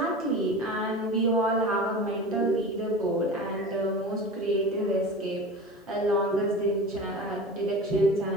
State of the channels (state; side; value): normal; both; correlation 0.33